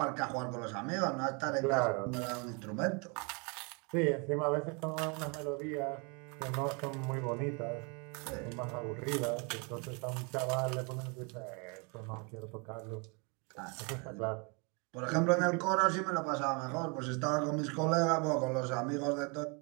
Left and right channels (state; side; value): quieter; left; 32.7 dB